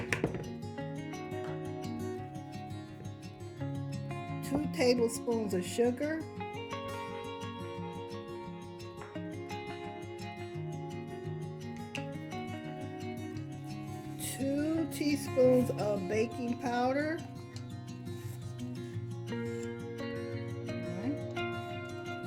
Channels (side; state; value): both; identical; correlation 1.00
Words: 2 tablespoons of sugar, 2 teaspoons of baking powder,